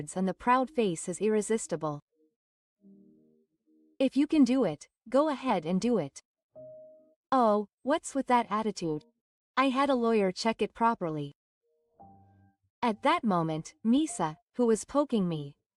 and the proud face is irresistible. If you can do it, go ahead and do it. Oh, what's with that attitude? I had a lawyer check it properly. At that moment, Misa, who was poking me,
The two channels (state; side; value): identical; both; correlation 1.00